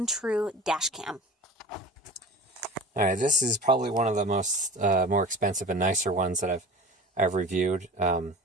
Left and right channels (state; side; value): normal; both; correlation 0.36